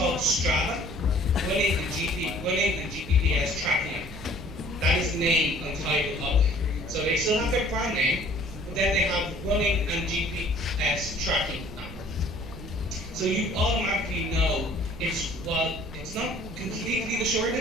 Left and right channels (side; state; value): right; noise; rumble, 14 dB below the sound